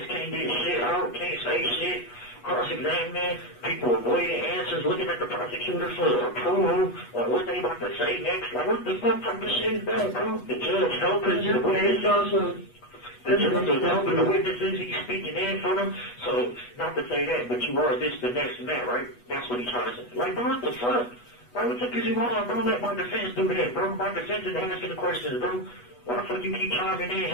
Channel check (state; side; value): late; right; 8.2 ms